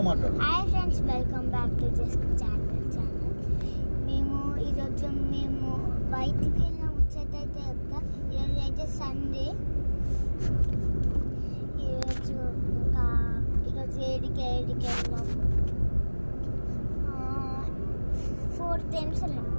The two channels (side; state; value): both; inverted; correlation -1.00